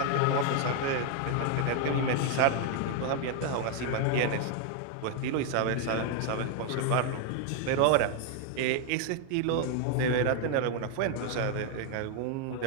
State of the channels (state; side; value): different; both; correlation 0.00